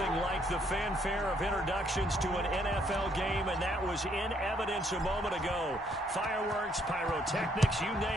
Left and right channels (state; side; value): normal; both; correlation 0.70